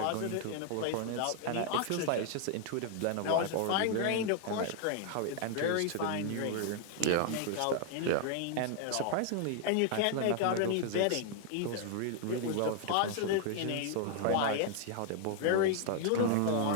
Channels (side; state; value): both; different; correlation 0.00